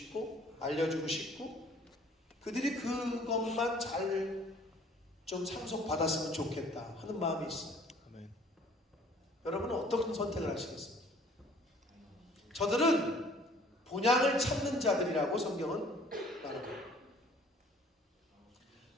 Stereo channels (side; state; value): both; normal; correlation 0.55